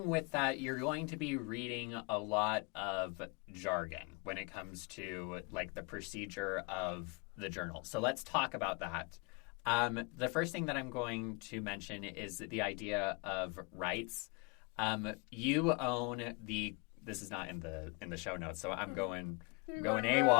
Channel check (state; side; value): quieter; right; 31.1 dB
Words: with that, you're going to be reading a lot of jargon when it comes to the procedure of the journal. So let's talk about that. The first thing that I'm going to mention is the idea of rights. You own this is not in the show notes, so I'm going